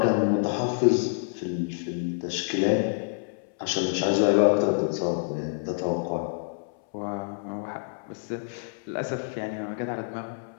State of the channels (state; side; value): silent; right; 60 dB below the other